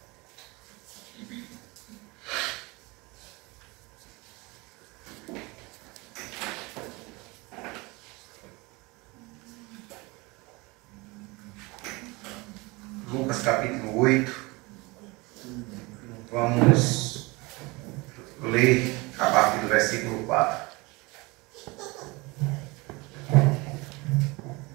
Lucas, capítulo 8. Vamos ler a partir do versículo 4.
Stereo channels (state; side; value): quieter; left; 24.8 dB